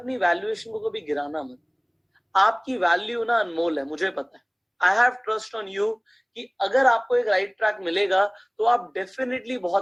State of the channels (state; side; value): identical; both; correlation 1.00